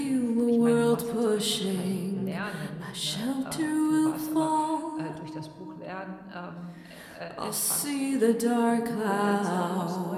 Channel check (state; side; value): identical; both; correlation 1.00